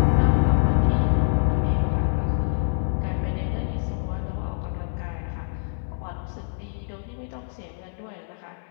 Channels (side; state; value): right; silent; 62 dB below the other